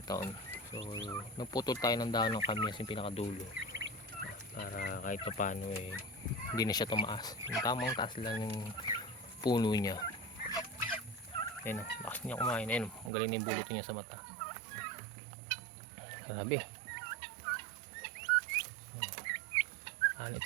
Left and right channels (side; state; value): left; drops out; at 13.1 s